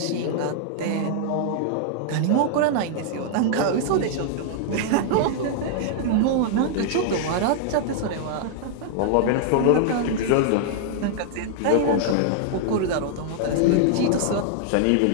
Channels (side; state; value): both; different; correlation -0.01